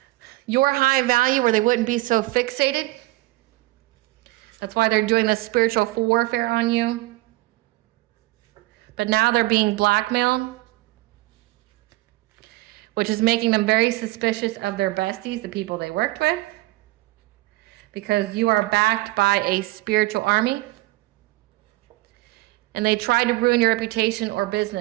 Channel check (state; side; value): quieter; left; 19.9 dB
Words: Your high value, where they wouldn't be so fixated. That's why they're doing this spiritual warfare on you. But now they're being blackmailed, which is making them very suspicious of their besties, the people they worked with. Because you are backed by a spiritual army. And they tried to ruin your reputation or